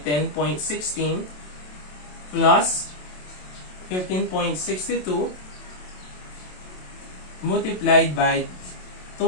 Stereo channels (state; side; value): late; right; 27 ms